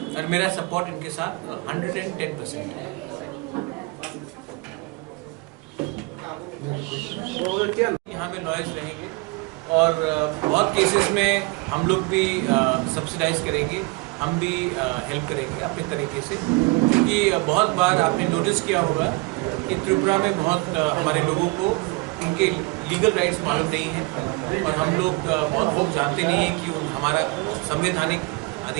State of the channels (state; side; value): quieter; left; 25.9 dB